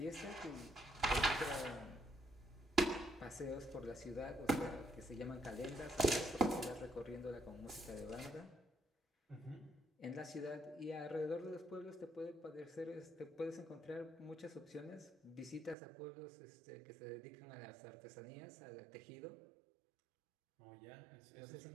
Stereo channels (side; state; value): left; drops out; at 15.8 s